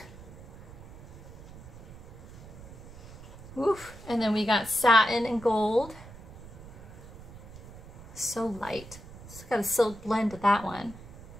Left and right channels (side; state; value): right; noise; rumble, 16 dB below the sound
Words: Oof. And then we got satin and gold. So light. It's got a silk blend to that one.